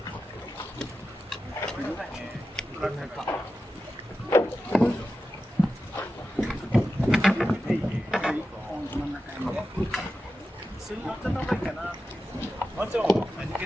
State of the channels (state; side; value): normal; both; correlation 0.92